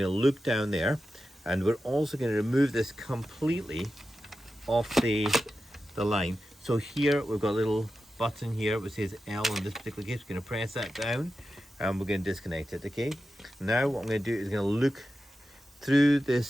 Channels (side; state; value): both; normal; correlation 0.91